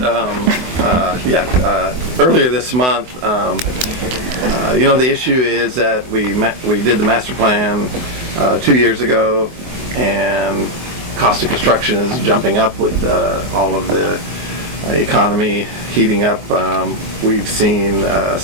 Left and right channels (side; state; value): left; late; 24 ms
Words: earlier this month. The issue is that we did the master plan 2 years ago, and cost of construction is jumping up with all of the economy heating up. We've seen